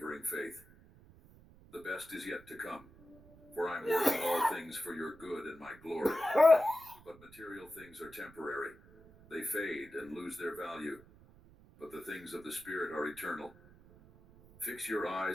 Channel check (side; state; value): right; noise; rumble, 23 dB below the sound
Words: faith. The best is yet to come, for I am working all things for your good and my glory. But material things are temporary. They fade and lose their value, but the things of the Spirit are eternal. Fix your